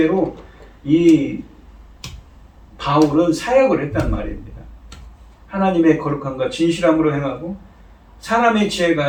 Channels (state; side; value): identical; both; correlation 1.00